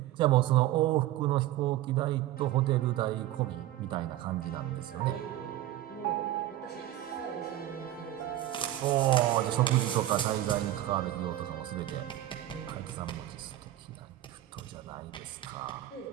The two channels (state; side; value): quieter; left; 14.0 dB